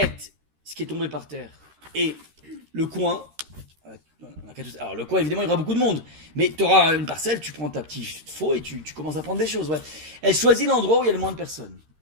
ce qui est tombé par terre, et le coin, alors le coin, évidemment, il y aura beaucoup de monde. Mais tu auras une parcelle, tu prends ta petite faux et tu commences à prendre des choses. Ouais. Elle choisit l'endroit où il y a le moins de personnes.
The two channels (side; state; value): left; late; 13 ms